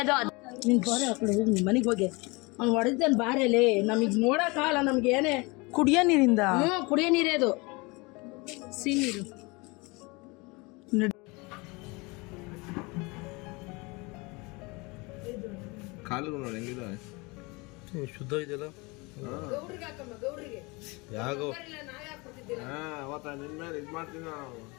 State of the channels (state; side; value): quieter; right; 26.4 dB